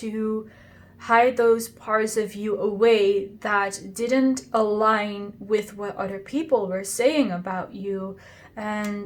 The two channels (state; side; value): identical; both; correlation 1.00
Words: hide those parts of you away that didn't align with what other people were saying about you.